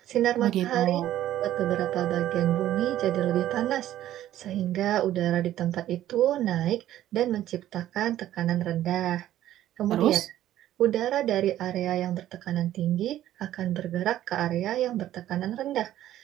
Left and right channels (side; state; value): left; quieter; 12.9 dB